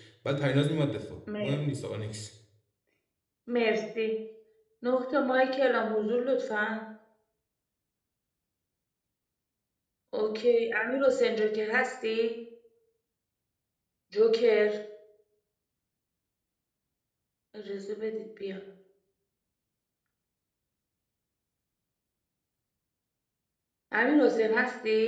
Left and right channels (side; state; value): both; identical; correlation 1.00